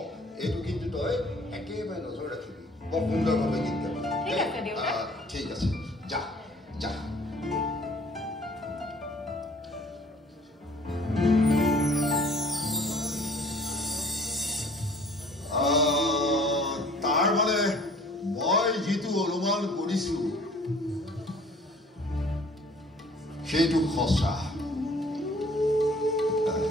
এইটো কিন্তু তই একেবাৰে নজৰ ৰাখিবি বৰ সুন্দৰভাৱে গীত গাবি ঠিক আছে যা যা তাৰ মানে মই যিটো অনুমান কৰিছোঁ সেইটো সঁচা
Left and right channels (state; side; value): normal; both; correlation 0.53